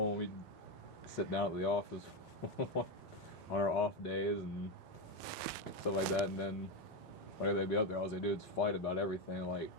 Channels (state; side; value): normal; both; correlation 0.09